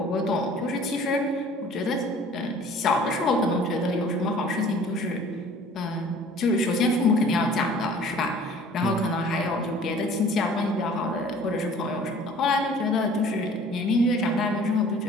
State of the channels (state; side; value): normal; both; correlation 0.50